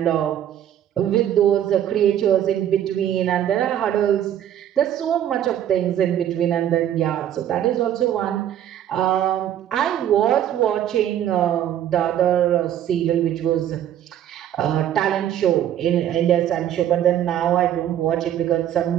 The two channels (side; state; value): left; quieter; 11.0 dB